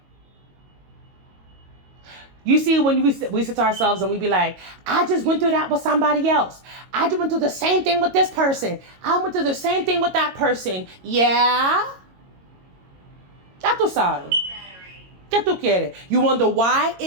You see, when we sit to ourselves and we be like, I just went through that with somebody else. I just went through the same thing with this person. I went through the same thing with that person. Yeah. Ya tú sabes. ¿Qué tú quieres? You wonder why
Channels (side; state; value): left; late; 22 ms